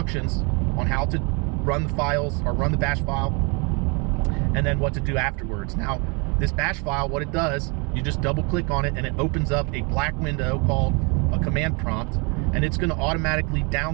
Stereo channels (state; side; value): quieter; left; 32.2 dB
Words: on how to run the files or run the bash file, and then what to do afterwards. Now, this bash file, what it does, you just double click on it and it opens up a black window called a command prompt, and it's going to automatically